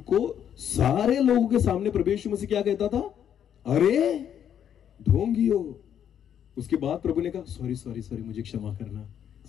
सारे लोगों के सामने प्रभु यीशु मसीह क्या कहता था? अरे ढोंगियो। उसके बाद प्रभु ने कहा, सॉरी, मुझे क्षमा करना।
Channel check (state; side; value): quieter; right; 9.2 dB